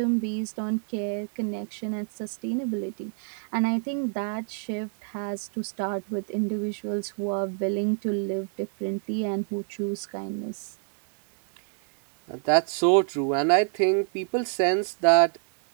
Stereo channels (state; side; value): silent; left; 60 dB below the other